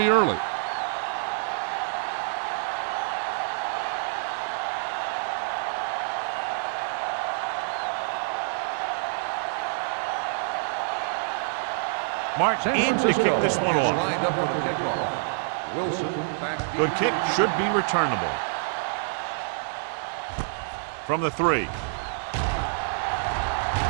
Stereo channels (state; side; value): silent; left; digital silence